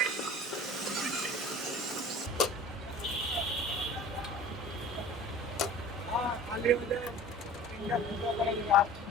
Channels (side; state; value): both; normal; correlation 0.42